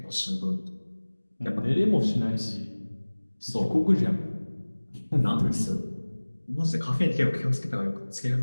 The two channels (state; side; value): inverted; both; correlation -1.00